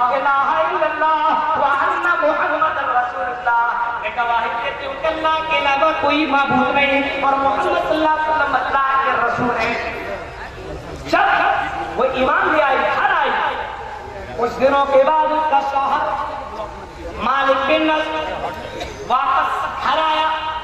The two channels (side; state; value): both; identical; correlation 1.00